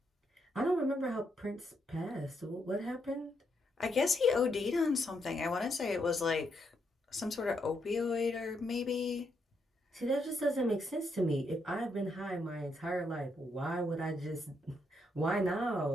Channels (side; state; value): both; normal; correlation 0.78